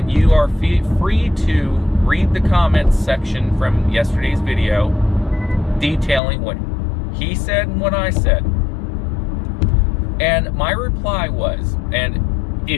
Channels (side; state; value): right; drops out; at 6.2 s